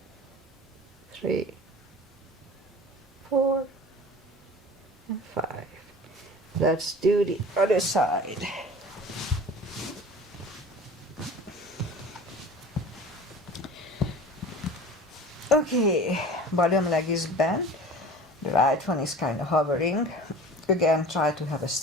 3, 4, and 5. Let's do the other side. Okay, bottom leg is bent. The right one is kind of hovering. Again, try to have a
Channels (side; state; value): both; normal; correlation 0.40